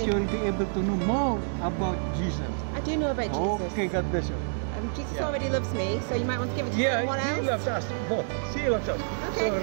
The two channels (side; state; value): left; silent; digital silence